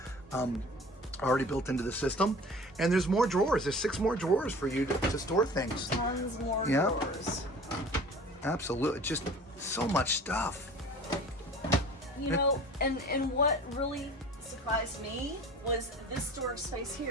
already built into the system. And there's more drawers. There's 6 more drawers for you to store things. Tons more drawers. Absolutely, just so much stuff. You know, and what really surprised me was this storage space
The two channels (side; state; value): both; normal; correlation 0.42